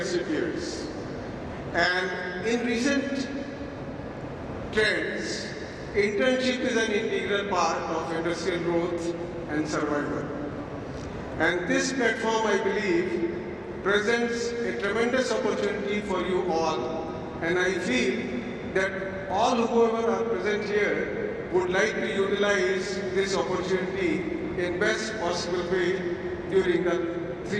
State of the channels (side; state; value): both; identical; correlation 1.00